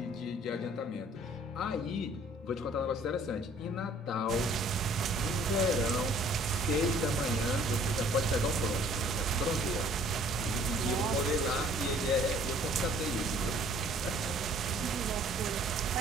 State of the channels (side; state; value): both; normal; correlation 0.56